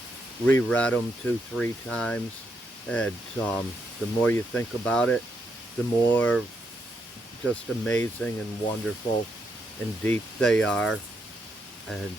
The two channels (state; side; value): normal; both; correlation 0.79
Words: reread them 2-3 times, and the more you think about it, the more just amazing and wonderful and deep they are. And